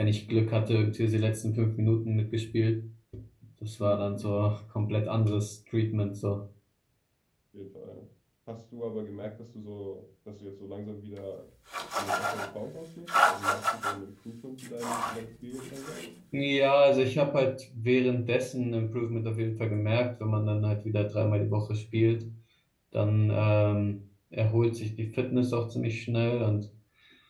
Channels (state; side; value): identical; both; correlation 1.00